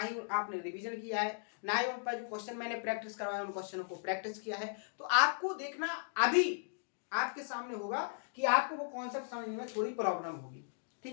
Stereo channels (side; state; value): right; silent; digital silence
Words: आपने रिवीजन किया है, ना ही उन पर जो क्वेश्चन मैंने प्रैक्टिस करवाया उन क्वेश्चनों को प्रैक्टिस किया है, तो आपको देखना अभी आपके सामने होगा कि आपको वो कॉन्सेप्ट समझने में थोड़ी प्रॉब्लम होगी।